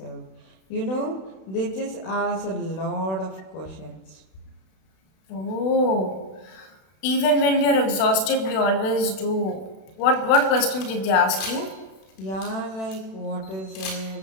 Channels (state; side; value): late; right; 32 ms